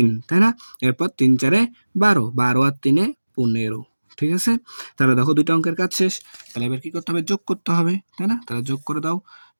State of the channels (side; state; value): both; inverted; correlation -1.00